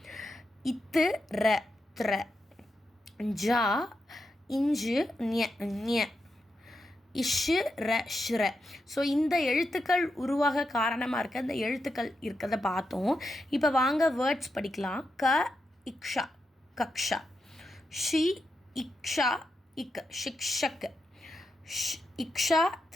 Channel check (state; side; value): normal; both; correlation 0.86